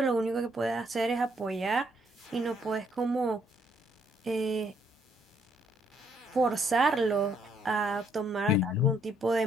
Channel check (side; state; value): both; normal; correlation 0.69